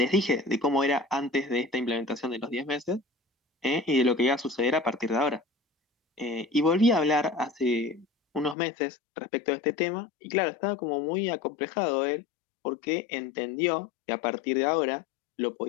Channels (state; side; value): drops out; right; at 8.6 s